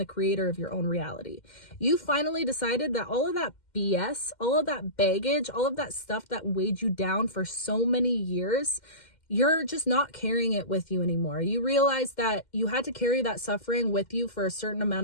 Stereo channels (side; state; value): right; late; 2.1 ms